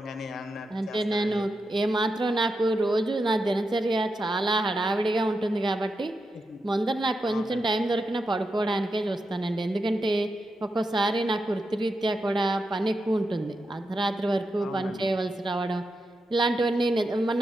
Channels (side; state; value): both; normal; correlation 0.87